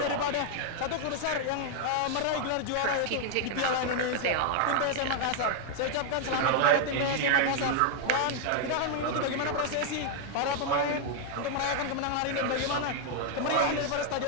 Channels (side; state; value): both; different; correlation 0.00